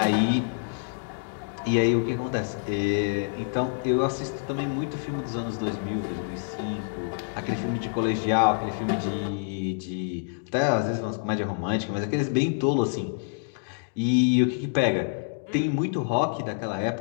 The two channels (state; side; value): silent; right; digital silence